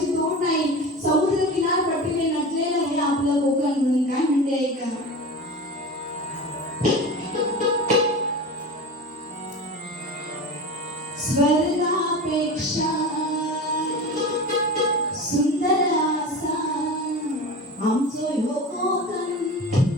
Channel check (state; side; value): normal; both; correlation 0.31